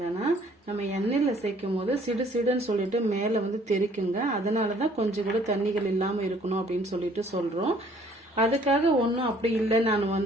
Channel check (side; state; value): both; normal; correlation 0.59